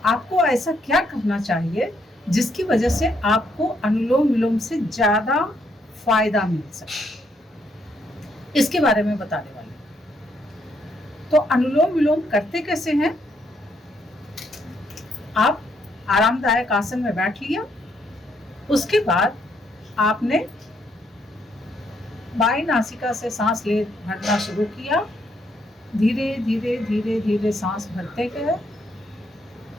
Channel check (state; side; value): normal; both; correlation 0.73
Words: आपको ऐसा क्या करना चाहिए जिसकी वजह से आपको अनुलोम विलोम से ज़्यादा फायदा मिल सके, इसके बारे में बताने वाले। तो अनुलोम विलोम करते कैसे हैं? आप आरामदायक आसन में बैठ लिया, उसके बाद आपने बाईं नासिका से सांस ले भरना शुरू किया। धीरे धीरे धीरे धीरे सांस भरते गए,